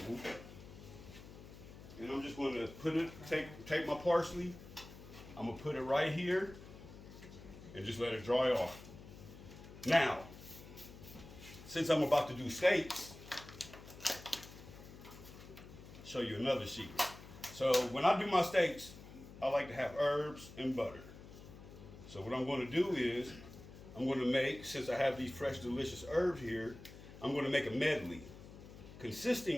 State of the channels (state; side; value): noise; left; hum, 16 dB below the sound